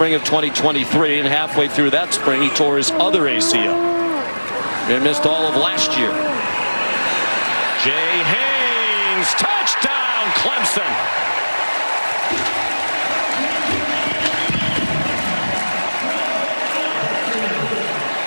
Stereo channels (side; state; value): both; inverted; correlation -1.00